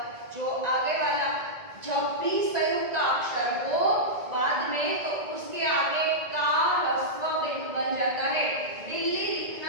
जो आगे वाला जब भी संयुक्त अक्षर हो बाद में तो उसके आगे का ह्रस्व बन जाता है। बिल्ली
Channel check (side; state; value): left; late; 1.9 ms